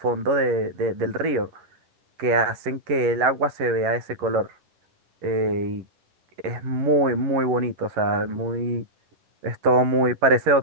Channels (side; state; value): left; late; 11 ms